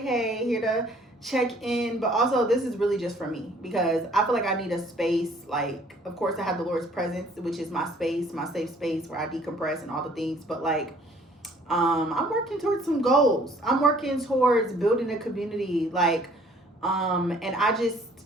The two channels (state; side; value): normal; both; correlation 0.58